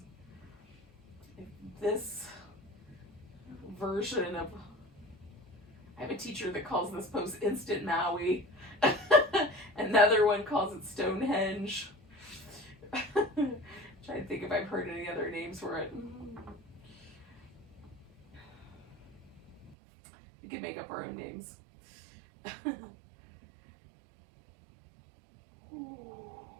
This version of, I have a teacher that calls this pose instant Maui. Another one calls it Stonehenge. Trying to think if I've heard any other names for it. We could make up our own names. So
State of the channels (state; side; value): drops out; left; at 19.8 s